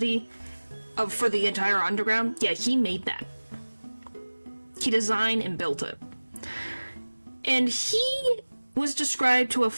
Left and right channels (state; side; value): inverted; both; correlation -1.00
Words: for the entire underground. Yeah, he made that. He designed and built it. And he was described to have